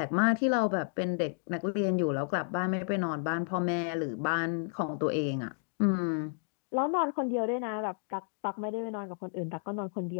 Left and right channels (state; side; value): silent; right; digital silence